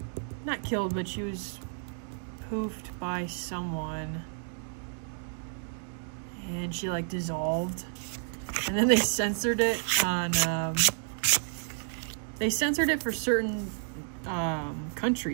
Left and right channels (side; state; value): left; silent; digital silence